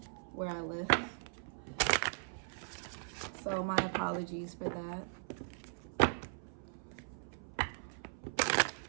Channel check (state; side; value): silent; left; 52 dB below the other